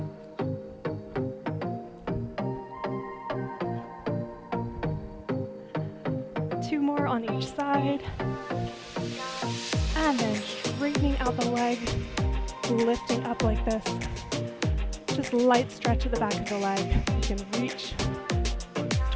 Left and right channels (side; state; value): both; identical; correlation 1.00